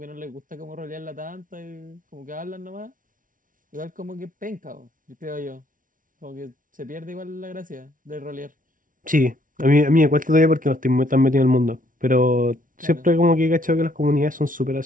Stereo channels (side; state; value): left; late; 0.39 ms